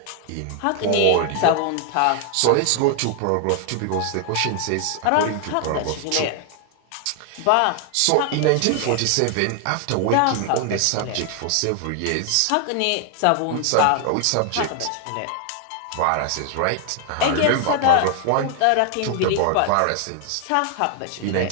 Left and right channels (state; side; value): different; both; correlation 0.00